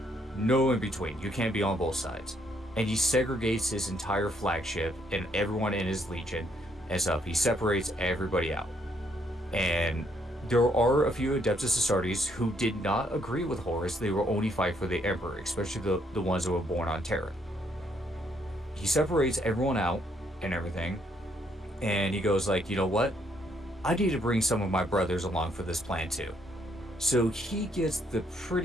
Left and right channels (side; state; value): both; normal; correlation 0.71